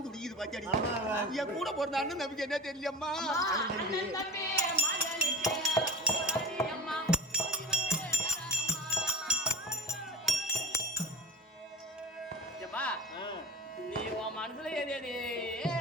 துடிக்குது பாத்தியாடி. என் கூட பிறந்த அண்ணன் நம்பிக்கை என்ன தெரியலம்மா. நீ உன் மனசுல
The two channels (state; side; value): normal; both; correlation 0.32